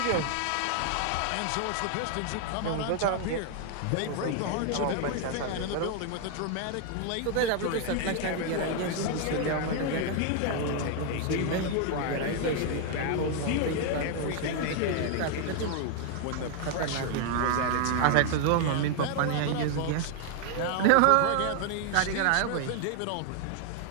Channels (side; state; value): both; different; correlation 0.00